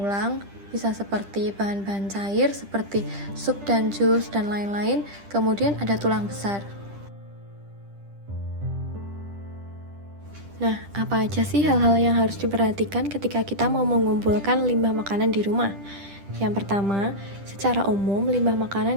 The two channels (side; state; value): left; late; 10 ms